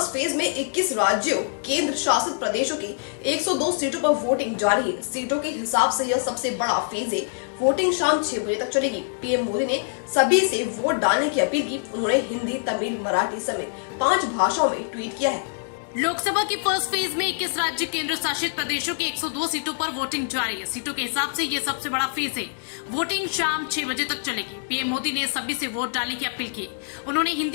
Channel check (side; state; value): right; silent; 62 dB below the other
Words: phase में 21 राज्यों केंद्र शासित प्रदेशों की 102 सीटों पर वोटिंग जारी है। सीटों के हिसाब से यह सबसे बड़ा फेज है। वोटिंग शाम 6 बजे तक चलेगी। पीएम मोदी ने सभी से वोट डालने की अपील की। उन्होंने हिंदी, तमिल, मराठी समेत 5 भाषाओं में ट्वीट किया है। लोकसभा के फर्स्ट फेज में 21 राज्य केंद्र शासित प्रदेशों की 102 सीटों पर वोटिंग जारी है। सीटों के हिसाब से ये सबसे बड़ा फेज है। वोटिंग शाम 6 बजे तक चलेगी। पीएम मोदी ने सभी से वोट डालने की अपील की। उन्होंने